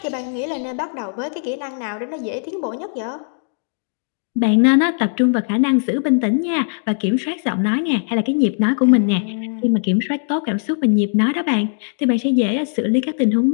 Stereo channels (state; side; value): silent; right; digital silence